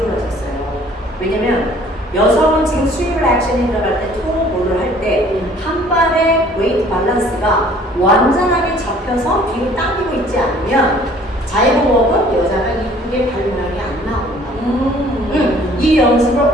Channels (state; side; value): normal; both; correlation 0.55